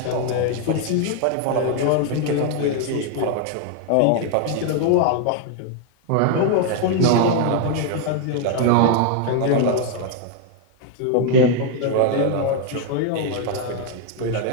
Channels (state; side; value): different; both; correlation 0.00